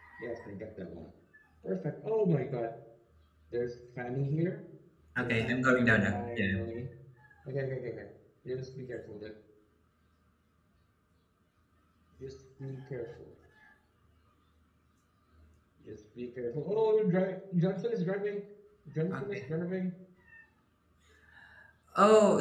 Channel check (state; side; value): identical; both; correlation 1.00